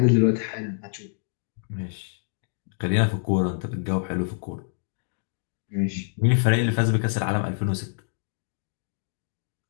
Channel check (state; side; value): silent; right; digital silence